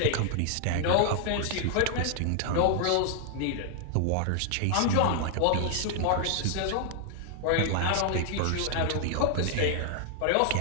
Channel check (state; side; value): different; both; correlation 0.00